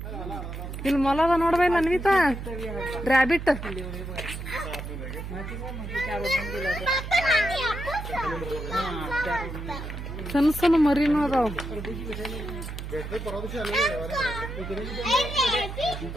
ಇಲ್ಲಿ ಮೊಲದ ನೋಡ್ಬೇಲ್ಲ ಅನ್ವಿತಾ, ರ್ಯಾಬಿಟ್. ಸಣ್ಣ ಸಣ್ಣ ಮರಿನೂ ಅದಾವ.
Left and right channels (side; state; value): right; noise; hum, 7 dB below the sound